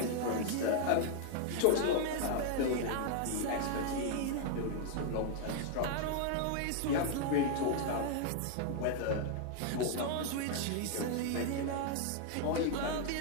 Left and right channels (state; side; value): different; both; correlation 0.00